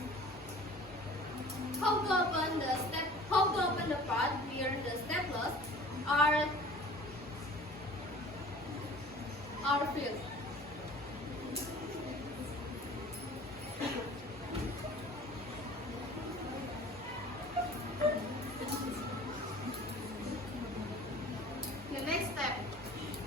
How to open the part where the staplers are filled. The next step,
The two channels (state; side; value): normal; both; correlation 0.45